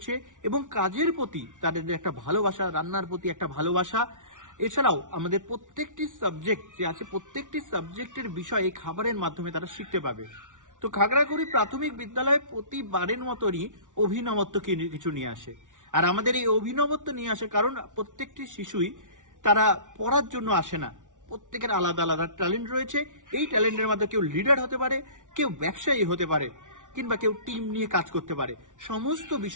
এবং কাজের প্রতি তাদের একটা ভালোবাসা, রান্নার প্রতি একটা ভালোবাসা, এছাড়াও আমাদের প্রত্যেকটি সাবজেক্ট যে আছে প্রত্যেকটি সাবজেক্টের বিষয় এই খাবারের মাধ্যমে তারা শিখতে পাবে। তো খাগড়াকুড়ি প্রাথমিক বিদ্যালয়ে প্রতিবারের মতনই অভিনবত্ব কিছু নিয়ে আসে। আর আমাদের এই অভিনবত্ব নিয়ে আসে কারণ প্রত্যেকটি শিশুই তারা পড়ার জন্য আসে না, প্রত্যেকের আলাদা আলাদা ট্যালেন্ট রয়েছে। এই ট্যালেন্টের মধ্যে কেউ লিডার হতে পারে, কেউ ব্যবসায়ী হতে পারে, কিংবা কেউ টিম নিয়ে কাজ করতে পারে। সমস্ত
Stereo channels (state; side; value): late; left; 0.87 ms